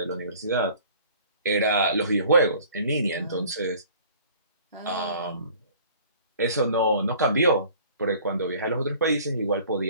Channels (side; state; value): both; inverted; correlation -0.51